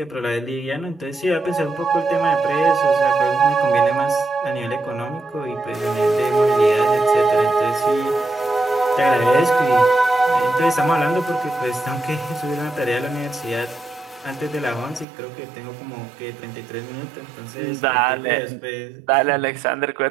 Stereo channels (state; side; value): drops out; left; at 15.1 s